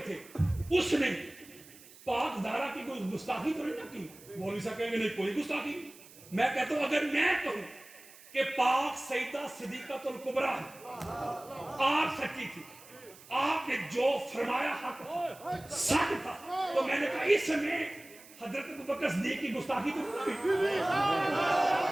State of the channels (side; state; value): right; noise; hiss, 21 dB below the sound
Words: تھے, اس نے پاک زہرا کی کوئی گستاخی تو نہیں نہ کی, مولوی صاحب کہیں گے نہیں کوئی گستاخی. میں کہتا ہوں اگر میں کہوں کہ پاک سیدہ صدیقۃ الکبریٰ آپ سچی تھی, آپ نے جو فرمایا حق سچ تھا, تو میں نے کہا اس میں حضرت ابوبکر صدیق کی گستاخی تو نہیں ہوئی.